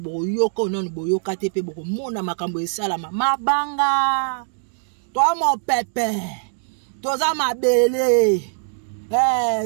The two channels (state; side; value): silent; left; digital silence